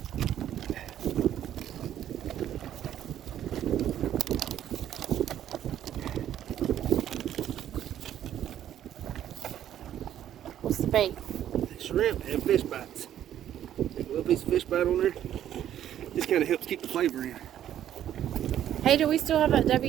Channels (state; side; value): quieter; left; 11.0 dB